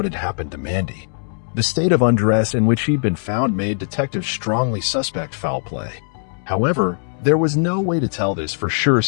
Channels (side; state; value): right; silent; 66 dB below the other